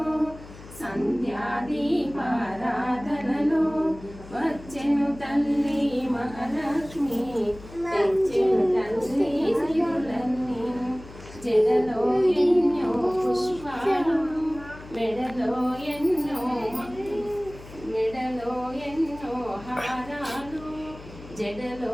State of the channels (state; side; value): noise; left; hum, 17 dB below the sound